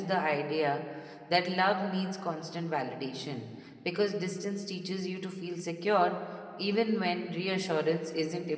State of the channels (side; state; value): both; identical; correlation 1.00